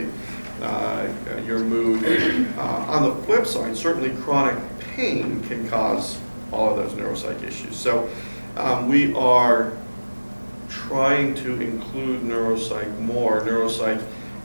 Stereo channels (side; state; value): both; inverted; correlation -1.00